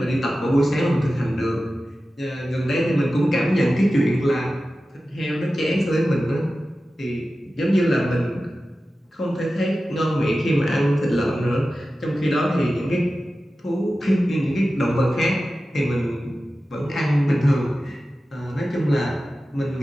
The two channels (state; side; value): normal; both; correlation 0.94